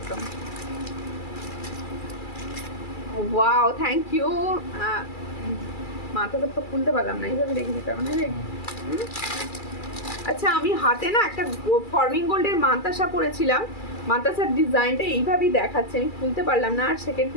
Wow, thank you. মাথাটা তো খুলতে পারলাম না, এইভাবে রেখে দিতে হবে না রে। আচ্ছা, আমি হাতে না একটা ফর্মিং গোল্ডের মান্তাসা পরেছিলাম, মান্তাসার ডিজাইনটা এইভাবেই দেখাচ্ছে, আমি খুলতে পারলাম না, আর সেকেন্ড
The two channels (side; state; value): right; late; 2.3 ms